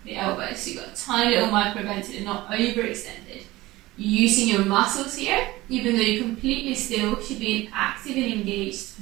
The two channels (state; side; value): quieter; left; 18.7 dB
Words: the elbows. So you've got a tiny little micro bend so they're not overextended. You're using your muscles here, even though you're completely still, should be in active and engaged